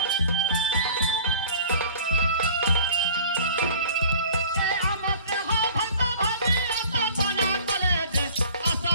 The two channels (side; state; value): both; inverted; correlation -0.45